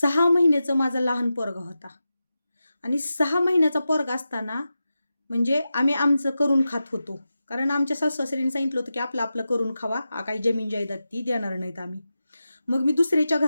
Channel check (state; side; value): inverted; both; correlation -0.92